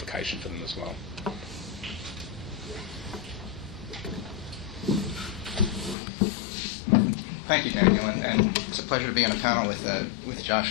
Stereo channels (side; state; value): right; drops out; at 6.0 s